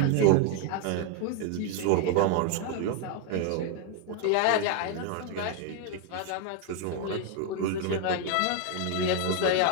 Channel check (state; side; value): different; both; correlation 0.01